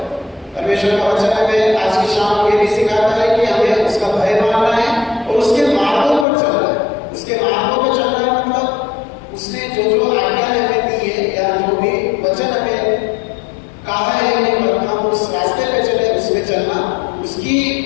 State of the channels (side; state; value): right; drops out; at 6.2 s